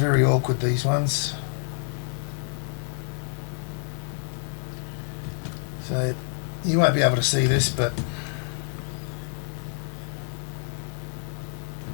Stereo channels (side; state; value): right; silent; 60 dB below the other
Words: awkward, these ones. So you won't be able to see this, but